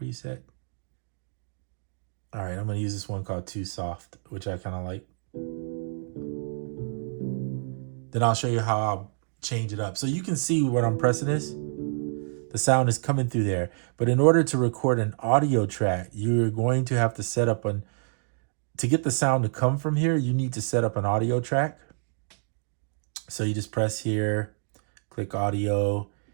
All right, I'm going to use this one called Too Soft, which I kind of like. Then I'll show you how I'll change it up. So you can see what I'm pressing is. The sound is coming through there. But in order to record an audio track, you're going to have to set up to get the sound to come from here, you need to set up an audio track. So you just press here, click audio.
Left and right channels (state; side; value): silent; left; digital silence